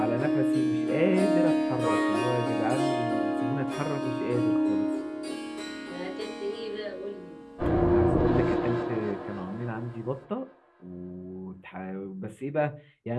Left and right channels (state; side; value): identical; both; correlation 1.00